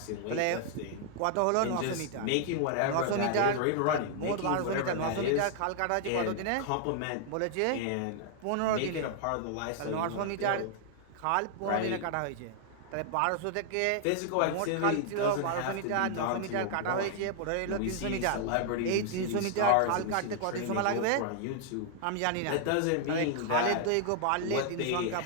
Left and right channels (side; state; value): both; different; correlation 0.00